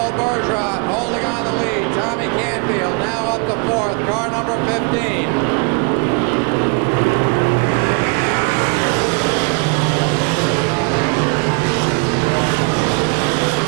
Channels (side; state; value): left; quieter; 33.8 dB